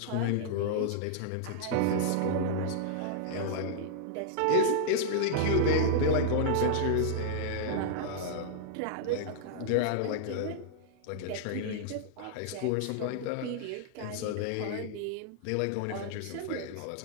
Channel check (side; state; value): both; different; correlation -0.01